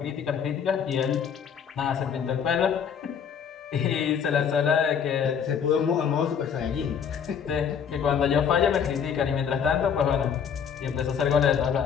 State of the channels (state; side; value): quieter; right; 7.4 dB